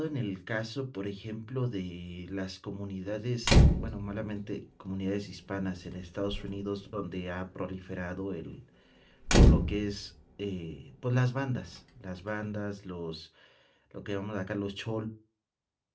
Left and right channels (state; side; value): identical; both; correlation 1.00